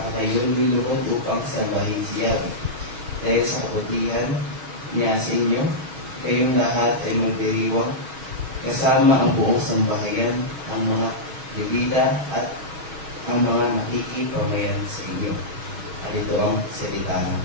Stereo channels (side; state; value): left; late; 6.3 ms